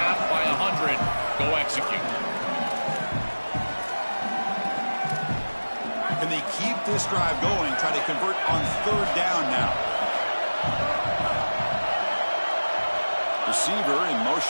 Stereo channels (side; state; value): both; inverted; correlation -1.00